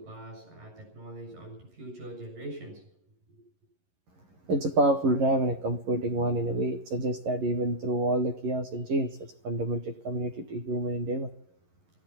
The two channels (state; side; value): late; left; 11 ms